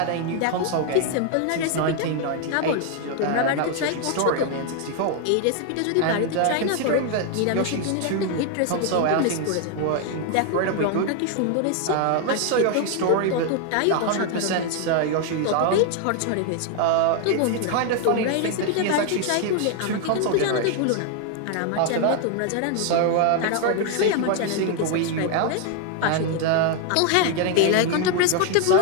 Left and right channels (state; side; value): different; both; correlation 0.01